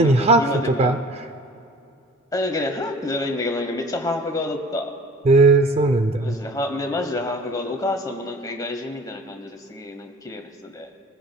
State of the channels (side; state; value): both; normal; correlation 0.45